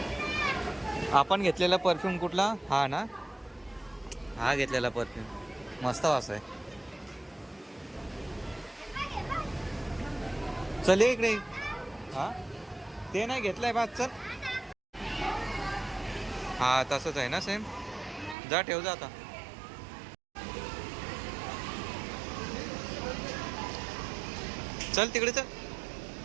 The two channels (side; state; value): left; drops out; at 18.4 s